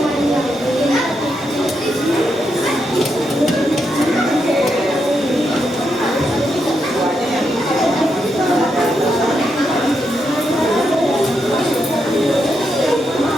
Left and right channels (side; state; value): both; normal; correlation 0.82